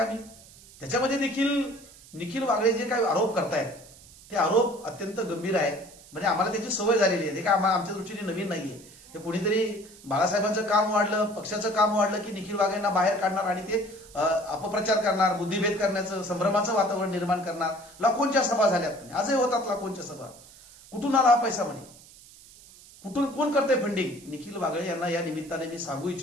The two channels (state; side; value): noise; right; hiss, 22 dB below the sound